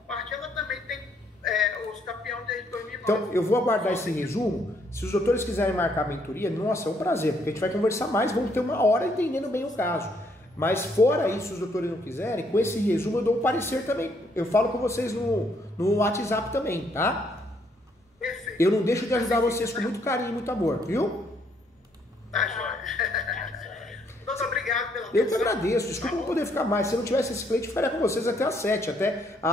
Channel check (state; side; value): normal; both; correlation 0.70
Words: parte, ela também tem os campeões desde 2009. Então, eu vou aguardar esse resumo. Se os doutores quiserem marcar a mentoria, nossa, é um prazer, porque a gente vai conversar mais, vamos ter uma hora entendendo bem o caso. Mas fora isso, se os doutores não quiserem, com esse resumo eu dou um parecer também. Eu falo com vocês no WhatsApp também, tá? Perfeito. Eu não deixo de ajudar vocês com muito carinho e muito amor, viu? Tá, joia. Doutor, obrigado pela Eu que agradeço, desculpa não poder ficar mais. Se eu não tivesse esse cliente, eu ficaria com vocês até às 7. Até a